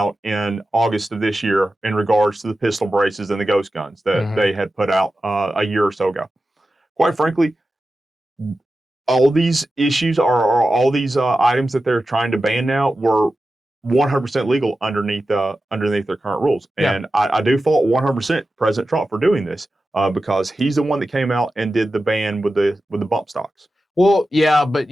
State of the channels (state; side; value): normal; both; correlation 0.93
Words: in August of this year in regards to the pistol braces and the ghost guns that they had put out a year or so ago. Quite frankly, all these issues are all these items that they're trying to ban now were 100% legal underneath their current rules. And I do fault 100% President Trump for doing this because he's the one that came out and did the ban with the bump stocks. Well, yeah, but